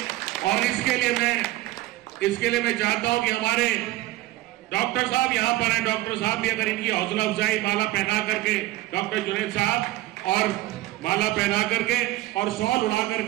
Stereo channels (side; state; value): left; quieter; 17.5 dB